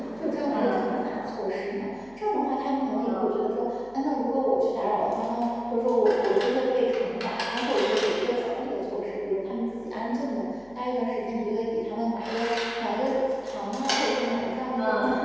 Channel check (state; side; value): noise; left; hum, 26 dB below the sound